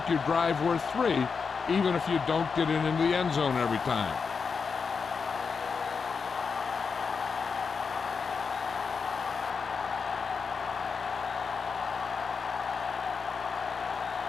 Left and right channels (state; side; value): quieter; right; 5.4 dB